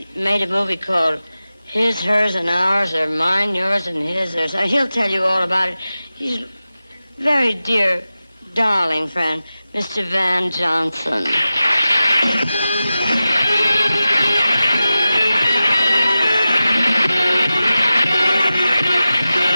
made a movie called His, Hers, and Ours, or Mine, Yours, and His. Or so. He'll tell you all about it. He's a very dear, darling friend, Mr. Van Johnson.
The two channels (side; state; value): both; inverted; correlation -0.94